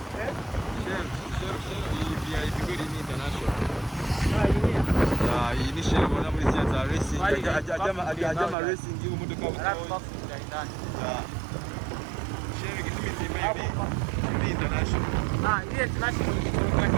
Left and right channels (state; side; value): drops out; left; at 8.6 s